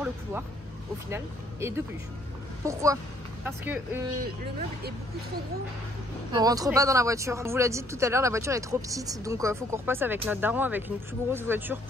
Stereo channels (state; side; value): normal; both; correlation 0.65